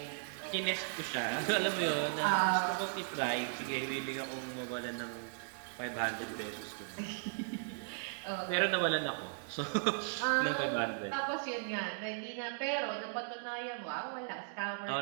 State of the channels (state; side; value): silent; left; digital silence